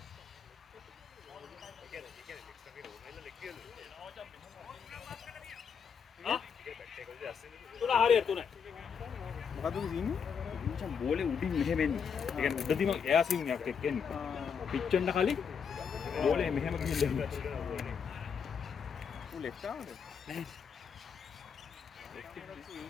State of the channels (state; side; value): quieter; right; 6.7 dB